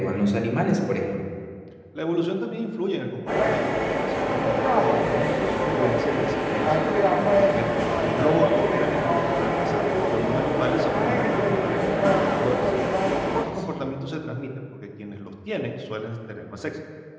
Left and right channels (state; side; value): identical; both; correlation 1.00